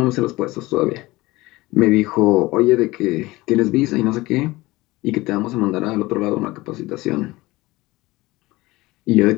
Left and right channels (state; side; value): quieter; right; 20.2 dB